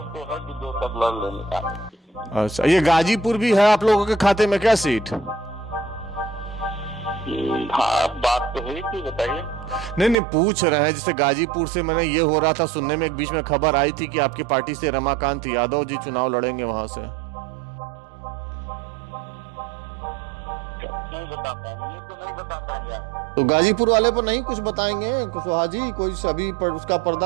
तो है कि 2 सब लड़ लेंगे। अच्छा, ये गाजीपुर भी है आप लोगों के खाते में क्या सीट? हाँ, बात तो हुई थी, बताइए। नहीं, पूछ रहे हैं, जैसे गाजीपुर से मैंने ये हो रहा था सुनने में, एक बीच में खबर आई थी कि आपकी पार्टी से रमाकांत यादव जी चुनाव लड़ेंगे वहां से। नहीं बता पाएंगे, तो नहीं बता पाएंगे। तो गाजीपुर वाले पर नहीं कुछ बताएंगे कुशवाहा जी? कोई अभी उसका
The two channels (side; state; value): left; drops out; at 10.2 s